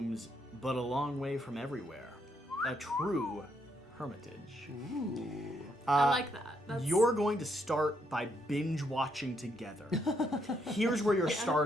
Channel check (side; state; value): both; normal; correlation 0.75